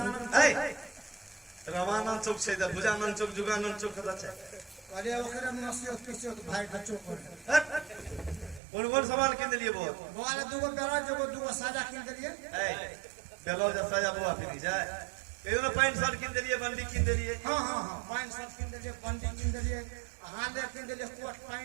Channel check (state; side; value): drops out; left; at 8.6 s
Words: ए रामानंद चौक से भुजानंद चौक, जुगानंद चौक कदा छे? अरे ओकरे में 80 भाई का चौक है। कौन सामान किन दिए बुआ? बुआ ले दूगो बेरा जगो दूगो साजा किन दिए। ए ब्लाउज साजा बुआ फिर जाए। केनो पैंट शर्ट किन दिए, बंडी किन दिए। हां हां हां पैंट शर्ट किन दिए, बंडी किन दिए, हाले किन दिए, कोट